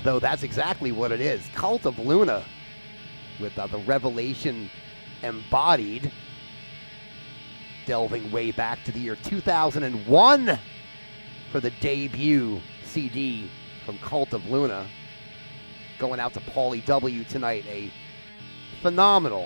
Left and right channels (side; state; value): both; inverted; correlation -1.00